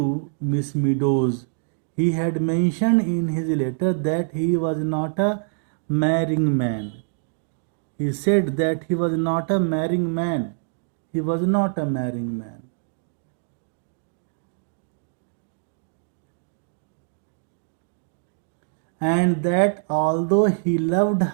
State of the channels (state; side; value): silent; left; digital silence